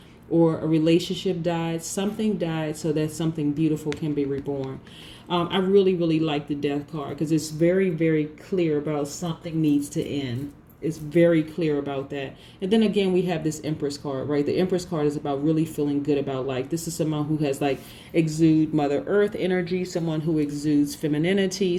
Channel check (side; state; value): both; identical; correlation 1.00